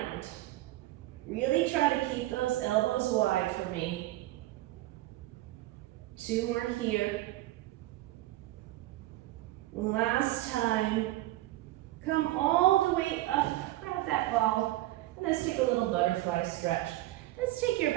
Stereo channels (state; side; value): quieter; left; 16.6 dB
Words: Really try to keep those elbows wide for me. 2 more here. Last time. Come all the way up. Grab that ball. And let's take a little butterfly stretch. Let's take your